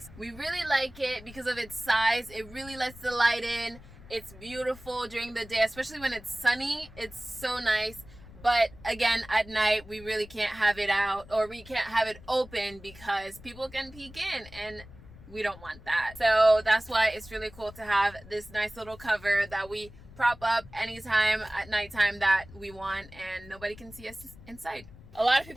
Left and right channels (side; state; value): left; noise; rumble, 19 dB below the sound